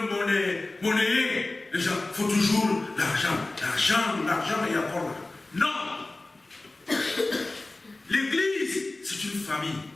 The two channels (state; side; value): quieter; right; 3.0 dB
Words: monnayé. Les gens, il faut toujours l'argent et encore là. Non! L'église, c'est une famille.